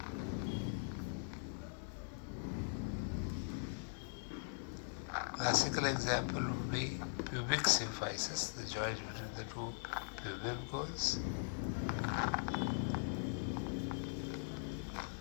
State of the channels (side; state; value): right; silent; digital silence